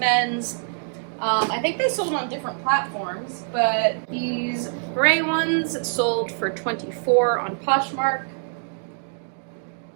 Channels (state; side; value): silent; left; digital silence